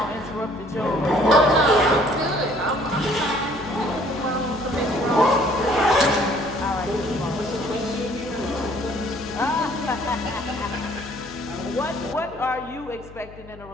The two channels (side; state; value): left; noise; hum, 19 dB below the sound